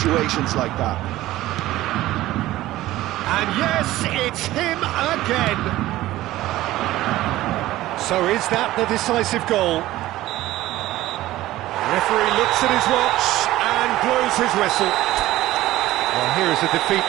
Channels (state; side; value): quieter; left; 16.0 dB